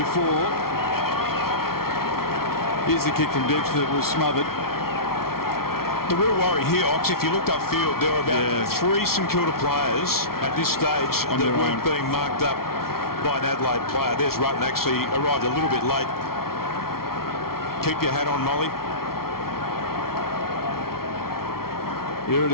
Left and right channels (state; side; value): late; right; 0.94 ms